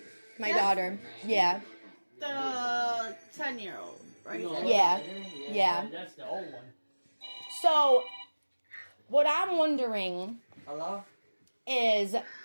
My daughter. Yeah. The 10-year-old, right? Yeah. That's the old one. So, what I'm wondering Hello? is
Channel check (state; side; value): inverted; both; correlation -1.00